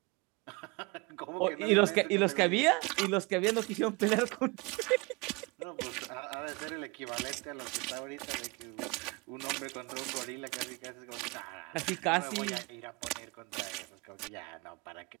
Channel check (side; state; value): left; quieter; 27.9 dB